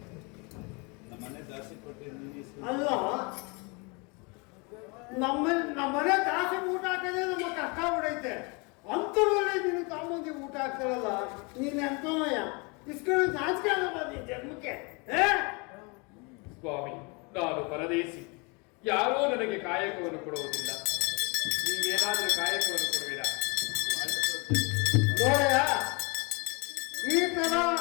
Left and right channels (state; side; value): quieter; right; 30.5 dB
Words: ಅಲ್ಲ ನಮ್ಮನೆ ದಾಸಿ ಊಟ ಹಾಕದೆ ನಮ್ಮ ಕಷ್ಟ ಬಿಡೈತೆ. ಅಂತರಲ್ಲಿ ನೀನು ತಾಮಂದಿ ಊಟ ಹಾಕ್ತಾರಲ್ಲ, ನೀನ್ ಎಂತನಯ್ಯ ಇಸ್ಕೊಂಡು ನಾಚಿಕೆ ಆಗಲ್ಲ ನೀನ್ ಜನ್ಮಕ್ಕೆ. ಸ್ವಾಮಿ, ನಾನು ಪರದೇಶಿ, ಯಾರೂ ನನಗೆ ಕಾಯಕವನ್ನು ಕೊಡುವುದಿಲ್ಲ. ನೀವೇನಾದರೂ ಕಾಯಕವನ್ನು ಕೊಡುವಿರಾ? ನೋಡಯ್ಯ, ಈ ತರ